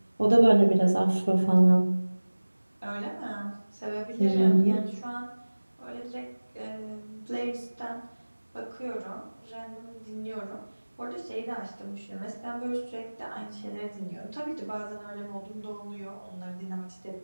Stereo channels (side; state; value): both; inverted; correlation -1.00